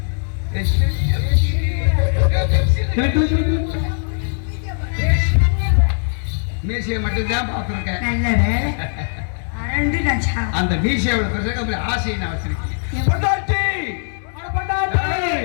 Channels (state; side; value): silent; right; digital silence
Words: மீசையை மட்டும்தான் பார்த்துருக்கேன். நல்ல வேலை அரண்டு கஞ்சா. அந்த மீசையோட பிரசங்க ஆசையை நான் வச்சிருக்கேன்.